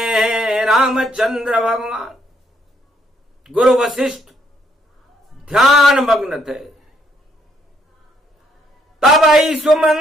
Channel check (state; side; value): normal; both; correlation 0.71